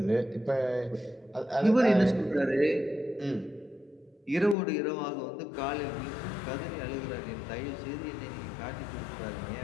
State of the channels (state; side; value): drops out; right; at 4.5 s